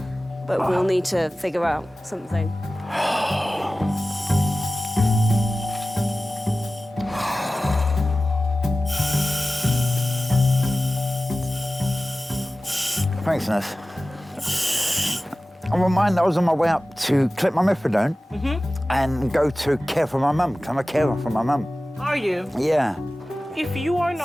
but we'll need to figure out something. Thanks, nurse. I'm reminded I was on my way up to collect my methadone and go to care for my mum, because I'm a carer for my mum. Are you? Yeah. If you are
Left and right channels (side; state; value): both; normal; correlation 0.96